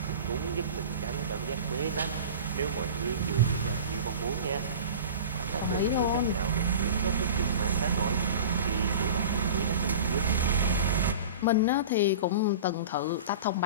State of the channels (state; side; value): inverted; both; correlation -0.36